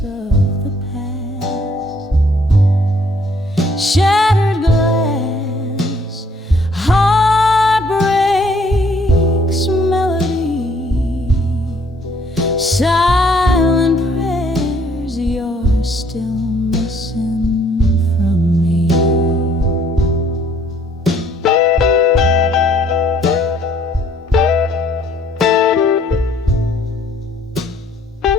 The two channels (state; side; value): normal; both; correlation 0.62